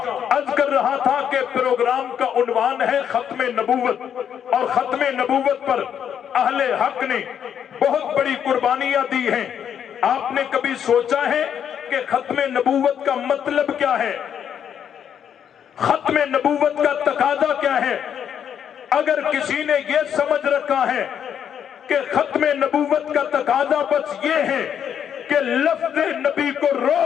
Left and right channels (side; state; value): right; quieter; 8.6 dB